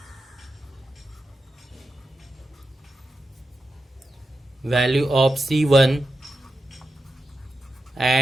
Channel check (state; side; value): normal; both; correlation 0.90